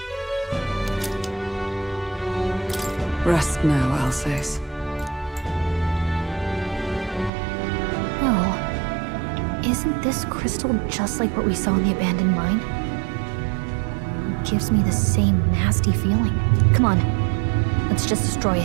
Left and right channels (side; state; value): left; drops out; at 7.3 s